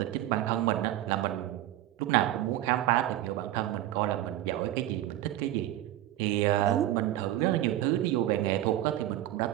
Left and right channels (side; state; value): left; quieter; 13.9 dB